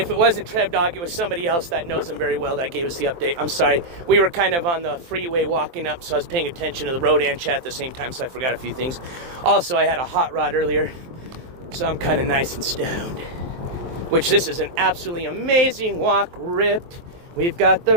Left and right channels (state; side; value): late; left; 23 ms